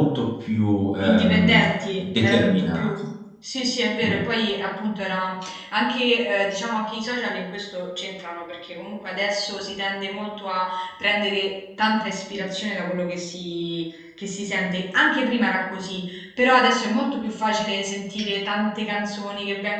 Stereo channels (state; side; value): identical; both; correlation 1.00